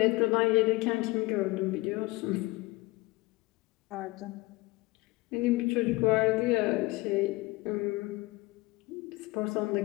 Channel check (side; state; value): right; quieter; 22.0 dB